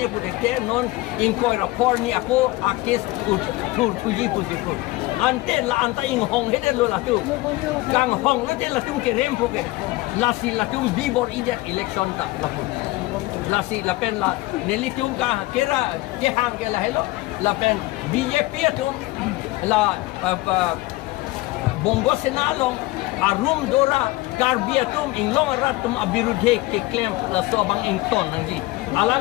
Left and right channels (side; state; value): right; quieter; 19.9 dB